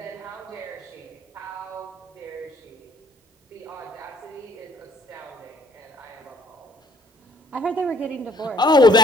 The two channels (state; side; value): normal; both; correlation 0.60